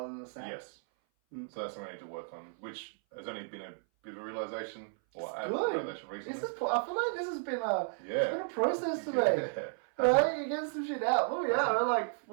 than the sand? Yes. So that's something I need to work on, which has only been a bit of a realization, or a Good. realization recently. I feel like this has been a process today. Yeah. Right? You get some shit out. Oh yeah, we're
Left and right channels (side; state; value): left; silent; 55 dB below the other